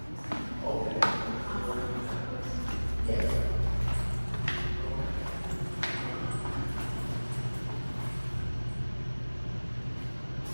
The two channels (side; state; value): both; inverted; correlation -1.00